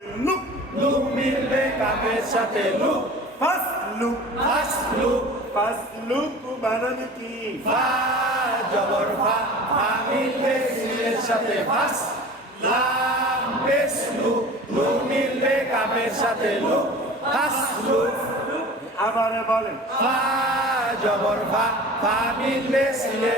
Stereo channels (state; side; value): normal; both; correlation 0.39